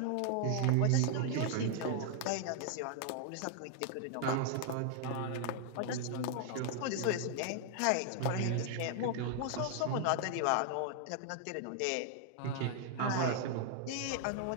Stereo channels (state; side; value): different; both; correlation 0.00